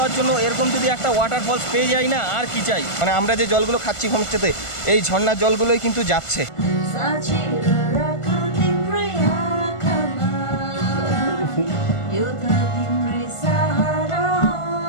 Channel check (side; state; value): right; late; 1.4 ms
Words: জন্য এরকম যদি একটা ওয়াটারফলস পেয়ে যাই না, আর কি চাই। মানে আমরা যে জলগুলো খাচ্ছি হোমস্টেতে, এই ঝর্ণার জলগুলোই কিন্তু যাচ্ছে।